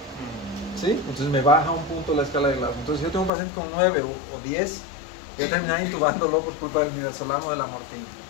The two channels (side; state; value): right; drops out; at 3.3 s